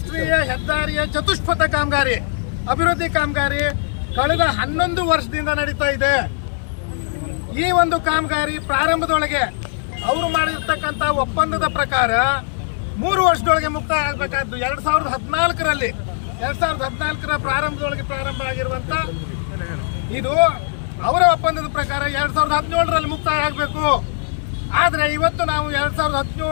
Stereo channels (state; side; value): silent; right; 66 dB below the other